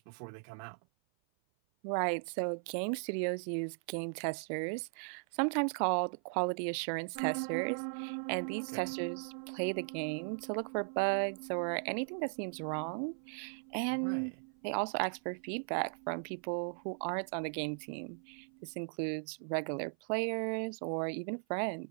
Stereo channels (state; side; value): silent; left; 53 dB below the other